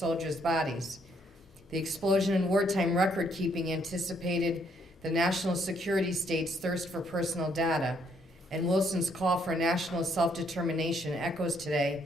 bodies. The explosion in wartime record-keeping anticipated the national security state's thirst for personal data, and Wilson's call for national self-determination echoes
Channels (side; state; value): both; normal; correlation 0.70